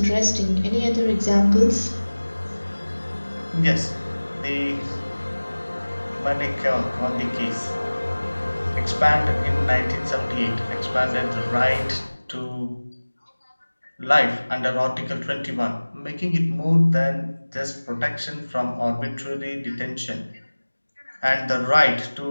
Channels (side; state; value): both; inverted; correlation -1.00